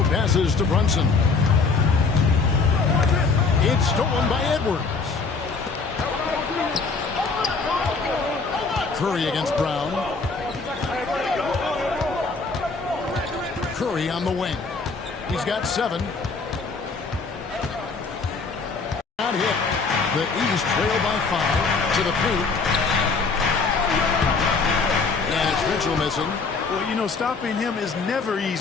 passes to Brunson. It's stolen by Edwards. Curry against Brown. Curry on the wing. He's got 7. Not hit. The East trail by 5 to the paint. And it's Mitchell missing. Well, you know, stopping him is never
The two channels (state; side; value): quieter; right; 4.5 dB